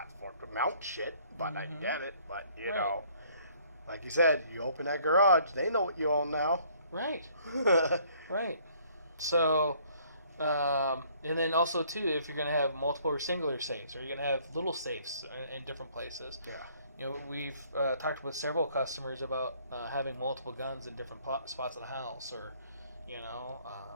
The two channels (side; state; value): both; inverted; correlation -0.61